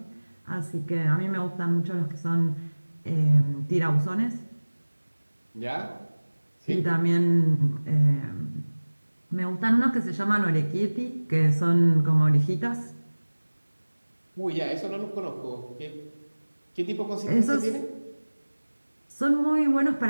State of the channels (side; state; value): both; inverted; correlation -1.00